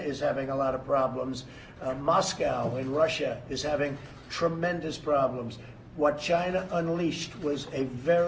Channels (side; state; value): both; identical; correlation 1.00